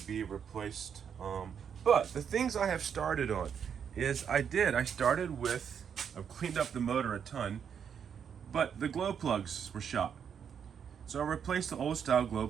be replaced. But the things I have started on is I've cleaned up the motor a ton, but the glow plugs were shot. So I replaced the old style glow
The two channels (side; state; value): left; quieter; 7.6 dB